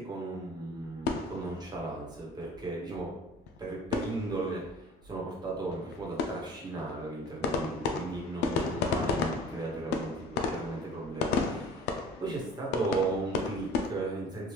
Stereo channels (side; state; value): both; normal; correlation 0.44